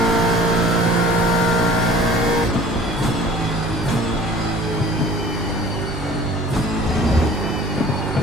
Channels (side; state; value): both; normal; correlation 0.48